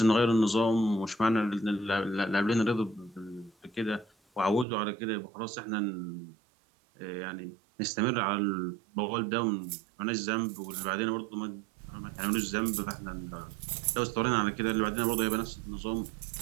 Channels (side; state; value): left; drops out; at 4.7 s